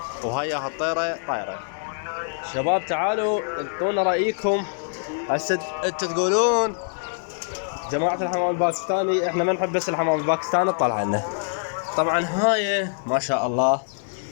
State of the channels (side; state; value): right; silent; digital silence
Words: وهاي الطيرة طايرة. شباب تعالوا انطونا رأيكم. هسه انتوا تقولون جماعة الحمام الباكستاني احنا ما نحب بس الحمام الباكستاني تطلع لنا. طبعا هاي ما شاء الله